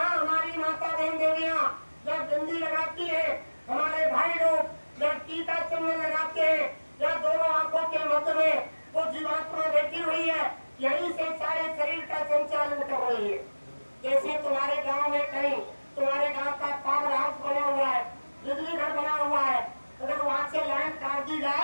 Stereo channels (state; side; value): inverted; both; correlation -1.00